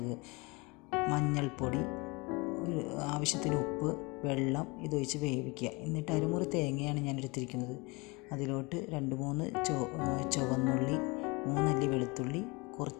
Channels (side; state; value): right; quieter; 26.5 dB